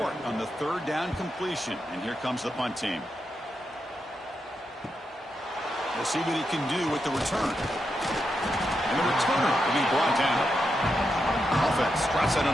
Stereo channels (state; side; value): normal; both; correlation 0.85